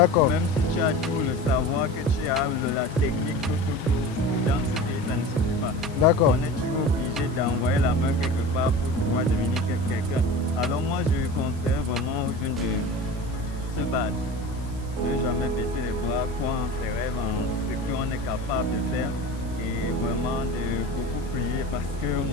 Même si tu as tout le savoir, que tu as la technique, tout, dans ce pays, ça ne suffit pas. D'accord. On est toujours obligé d'envoyer la main quelque part pour pouvoir devenir quelqu'un. Alors moi, je conseille vraiment aux jeunes de se battre, de ne jamais baisser les bras, croire en ses rêves, en ce qu'on est capable de faire. Et vraiment de beaucoup prier parce que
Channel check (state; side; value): noise; right; hiss, 22 dB below the sound